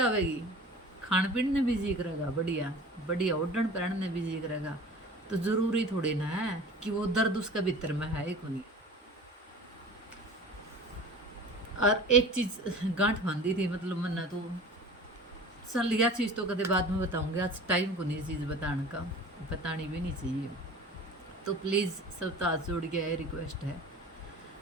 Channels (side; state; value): both; normal; correlation 0.40